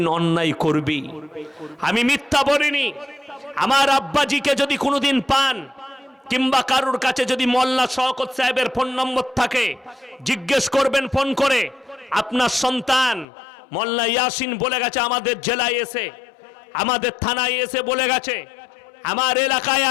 অন্যায় করবি। আমি মিথ্যা বলিনি। আমার আব্বাজিকে যদি কোনোদিন পান কিংবা কারুর কাছে যদি মোল্লা শওকত সাহেবের ফোন নম্বর থাকে, জিজ্ঞেস করবেন ফোন করে, আপনার সন্তান মোল্লা ইয়াসিন বলে গেছে আমাদের জেলায় এসে, আমাদের থানায় এসে বলে গেছে আমার এলাকায়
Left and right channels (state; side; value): drops out; right; at 13.2 s